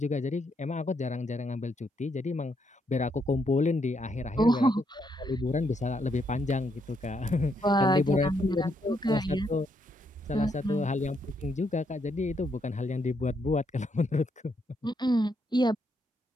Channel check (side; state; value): both; normal; correlation 0.76